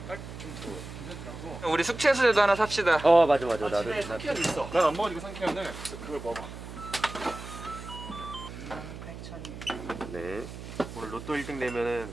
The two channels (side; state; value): right; noise; hum, 11 dB below the sound